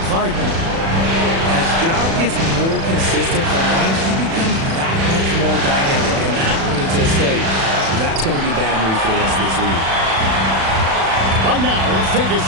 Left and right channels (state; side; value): late; left; 36 ms